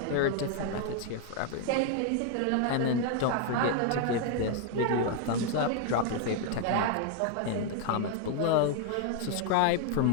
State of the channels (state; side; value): different; both; correlation 0.00